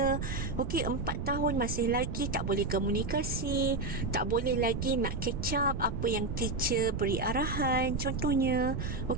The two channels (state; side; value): noise; right; rumble, 3 dB below the sound